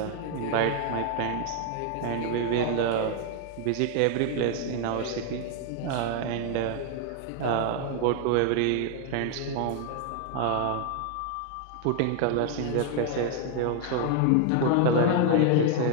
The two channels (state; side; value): different; both; correlation 0.00